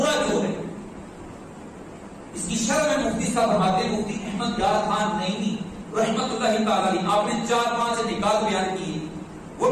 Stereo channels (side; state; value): both; identical; correlation 1.00